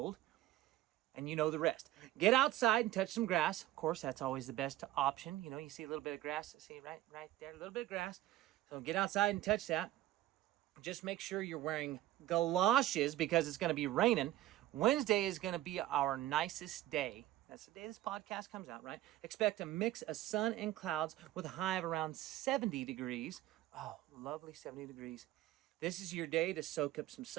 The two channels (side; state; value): left; quieter; 14.9 dB